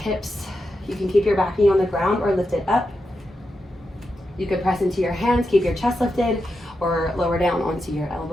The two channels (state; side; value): normal; both; correlation 0.87